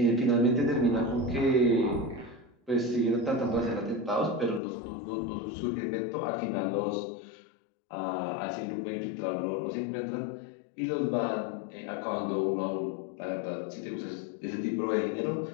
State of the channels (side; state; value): right; drops out; at 4.6 s